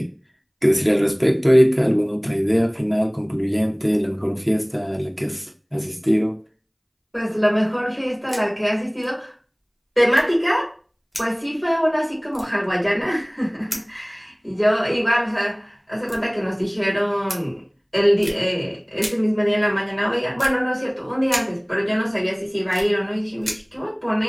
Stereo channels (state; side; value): identical; both; correlation 1.00